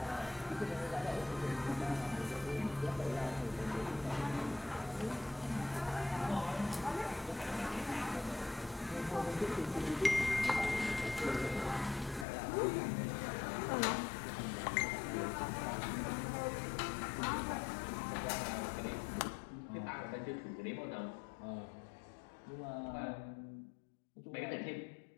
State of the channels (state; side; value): drops out; right; at 12.2 s